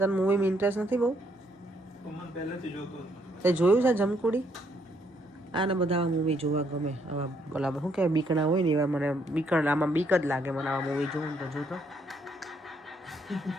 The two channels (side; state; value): both; normal; correlation 0.71